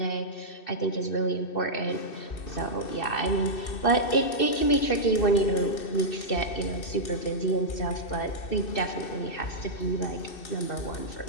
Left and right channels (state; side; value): late; right; 2.6 ms